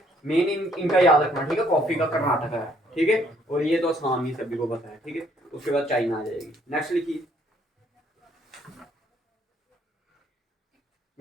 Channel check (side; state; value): both; normal; correlation 0.65